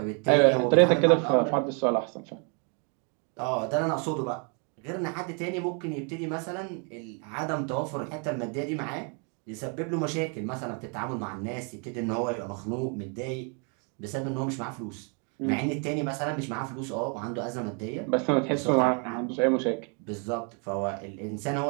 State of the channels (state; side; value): quieter; left; 37.8 dB